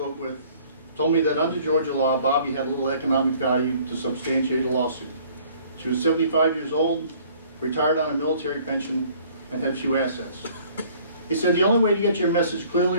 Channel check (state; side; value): inverted; both; correlation -0.56